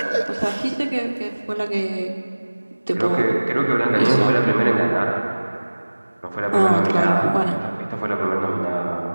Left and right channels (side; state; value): both; inverted; correlation -1.00